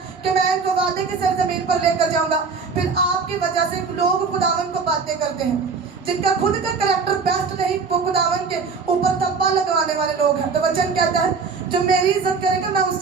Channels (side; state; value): left; quieter; 5.0 dB